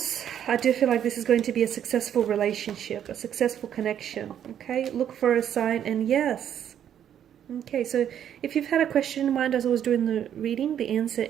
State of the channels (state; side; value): quieter; left; 9.7 dB